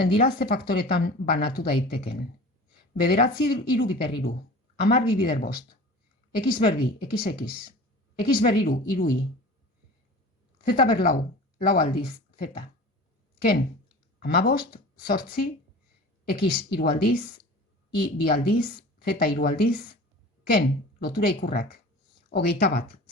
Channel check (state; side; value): normal; both; correlation 0.39